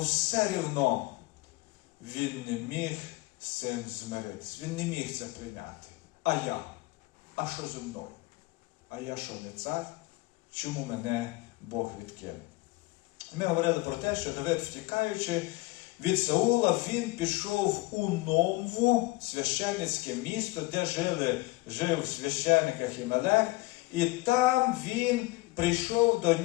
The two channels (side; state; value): right; quieter; 21.7 dB